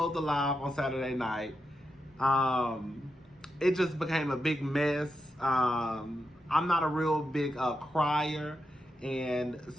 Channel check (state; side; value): normal; both; correlation 0.87